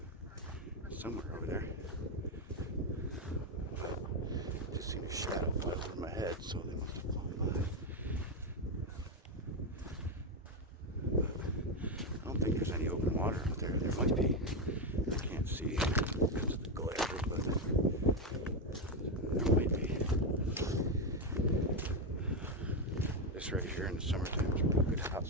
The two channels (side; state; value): both; normal; correlation 0.07